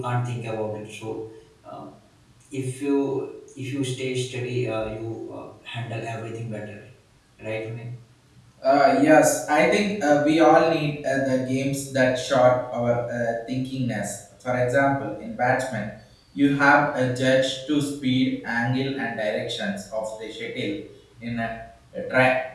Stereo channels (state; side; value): identical; both; correlation 1.00